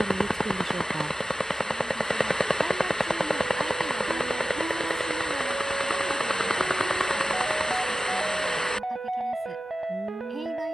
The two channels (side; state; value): both; normal; correlation 0.95